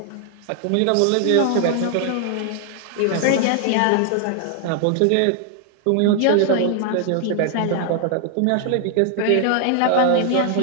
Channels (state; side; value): different; both; correlation 0.00